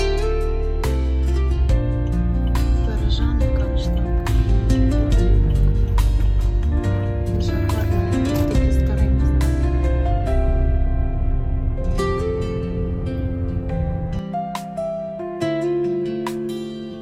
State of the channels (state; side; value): identical; both; correlation 1.00